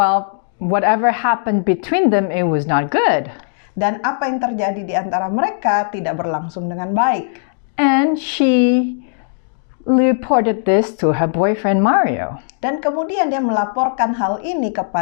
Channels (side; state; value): right; silent; digital silence